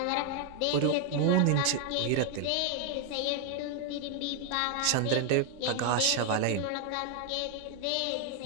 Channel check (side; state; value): both; different; correlation 0.01